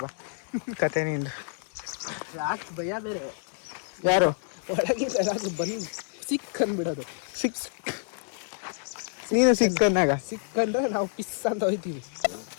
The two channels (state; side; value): silent; right; 58 dB below the other